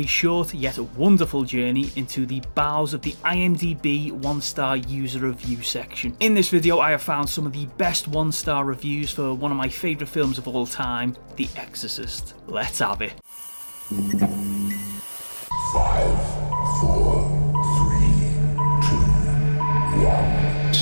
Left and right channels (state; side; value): inverted; both; correlation -1.00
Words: short yet wonderful journey into the bowels of the IMDb 1-star user review section. In this video I have found some of the best 1-star reviews for one of my favourite films of all time, The Exorcist. Let's have it. 5, 4, 3, 2, 1,